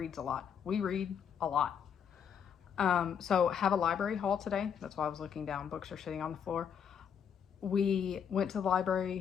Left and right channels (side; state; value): right; quieter; 7.7 dB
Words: a lot. We read a lot. So have a library haul today. That's why I was looking down. Books are sitting on the floor. We went to the